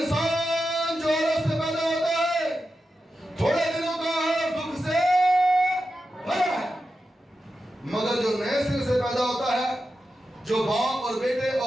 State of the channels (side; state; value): both; normal; correlation 0.90